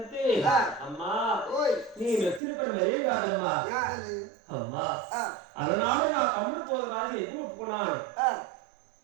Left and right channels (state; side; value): drops out; left; at 2.4 s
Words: అమ్మా నీ వ్యక్తులు మరీ కాదమ్మా అమ్మా అలనాడు నా తమ్ముడు పోతురాజు ఎక్కువ ఒప్పుకున్నాను